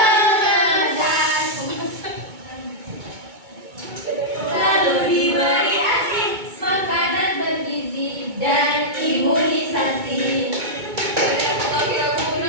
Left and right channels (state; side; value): late; left; 2.2 ms